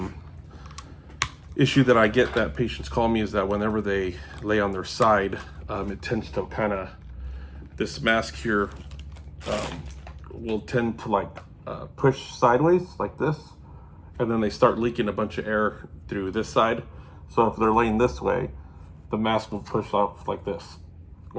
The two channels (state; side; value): identical; both; correlation 1.00